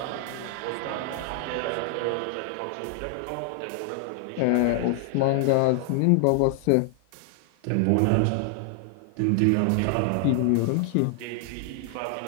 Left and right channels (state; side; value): different; both; correlation 0.00